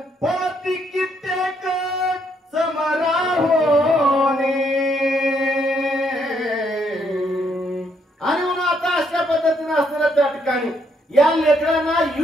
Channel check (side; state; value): both; normal; correlation 0.72